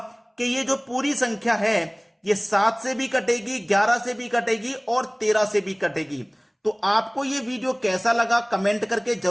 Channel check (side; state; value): both; identical; correlation 1.00